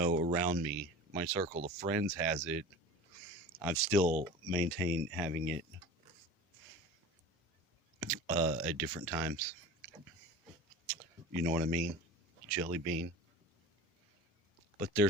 around me, my circle of friends, has it, I've still maintained having it at different times. You know what I mean? Jelly bean. But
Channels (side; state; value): both; normal; correlation 0.37